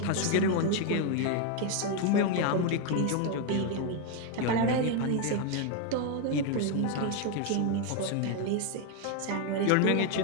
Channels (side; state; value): both; different; correlation 0.01